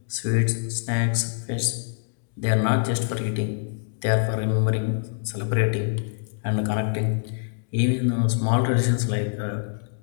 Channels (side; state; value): right; silent; digital silence